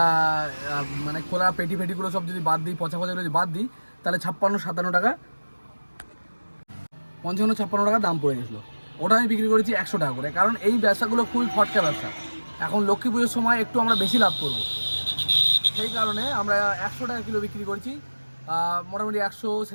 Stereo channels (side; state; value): both; inverted; correlation -1.00